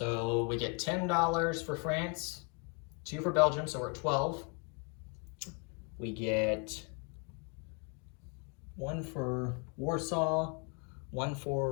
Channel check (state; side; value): quieter; right; 34.8 dB